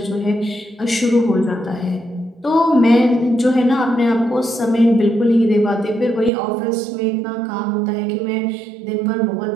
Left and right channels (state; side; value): drops out; left; at 6.3 s